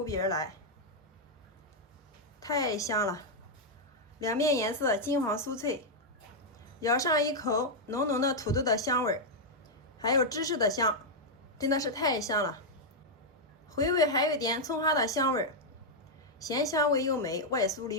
鼻而来，太香了。两面颜色金黄酥脆，咬上一口，浓浓的土豆的香味，还有芝士的香，真的是太香了。回味还有一点葱花的香味，咸香味又美，外酥里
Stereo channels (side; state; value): both; normal; correlation -0.03